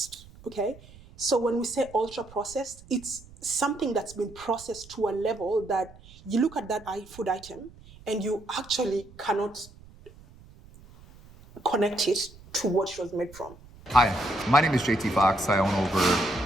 okay? So when we say ultra processed, it's something that's been processed to a level that you look at that food item and you actually cannot connect it to what it was made from. Hi, my name is JT Fox. I own over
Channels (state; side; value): noise; right; rumble, 22 dB below the sound